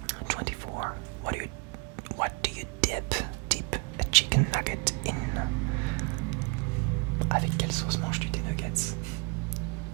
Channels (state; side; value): quieter; left; 31.5 dB